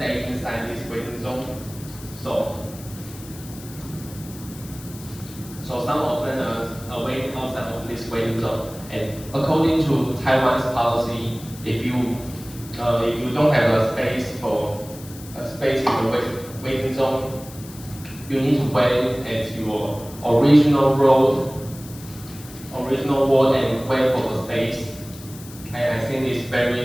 inside this waiting zone. So some of them are waiting outside of this waiting zone. And according to Taiwan's policy, if you don't have a space in the waiting zone, you need to wait at your original wall and wait for the space. And I think it's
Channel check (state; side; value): noise; left; hiss, 17 dB below the sound